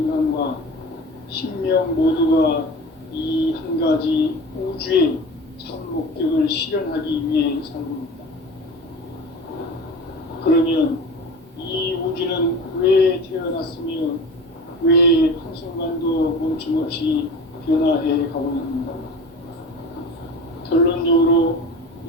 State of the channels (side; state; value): both; normal; correlation 0.34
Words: 신명 모두가 이 한 가지 우주의 참 목적을 실현하기 위해 살고 있다. 그러면 이 우주는 왜 태어났으며 왜 한순간도 멈춤없이 변화해 가고 있는가? 결론적으로